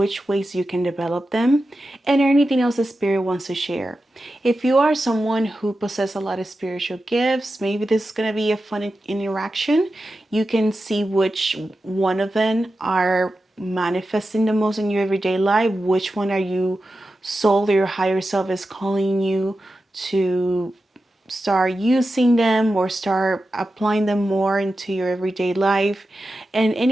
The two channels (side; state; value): both; normal; correlation 0.92